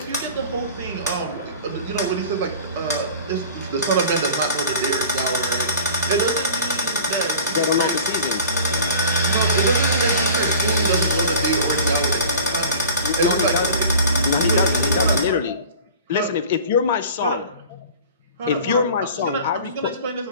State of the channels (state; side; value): inverted; both; correlation -0.42